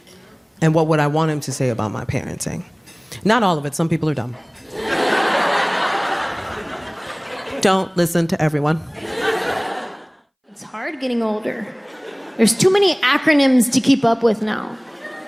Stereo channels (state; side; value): identical; both; correlation 1.00